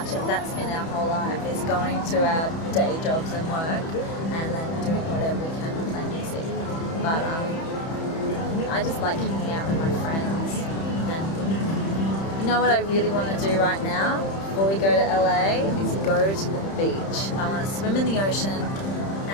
that's been our whole life, is going to our day jobs and work and then doing whatever we can to play music. But I just like hanging out with my friends. And you know what I really want to do right now before we go to LA is go to the beach. I want to swim in the ocean,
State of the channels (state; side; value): late; right; 31 ms